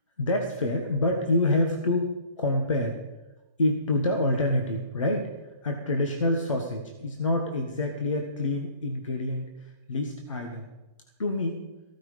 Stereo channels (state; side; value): inverted; both; correlation -0.53